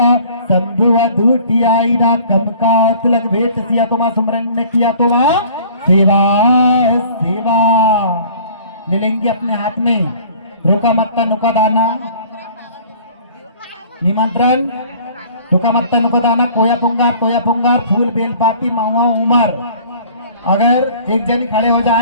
शंभु अधूटियाईना। कम का तिलक भेंट सिया तो मां सुमरन ने किया तो मां सेवा सेवा ले लेंगे अपने हाथ में। रोका मत्ता नुका दाना निमंत्रण, रुका मत्ता नुका दाना, कोया पुंगार, फूल बेलपाती, महुआ उमर। अगर एक जन खड़े हो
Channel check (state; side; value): inverted; both; correlation -0.50